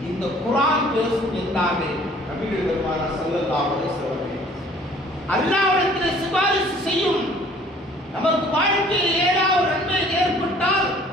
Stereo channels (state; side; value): normal; both; correlation 0.54